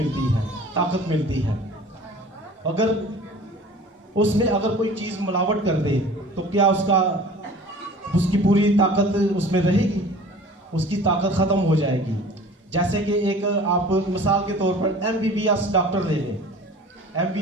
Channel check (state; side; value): normal; both; correlation 0.44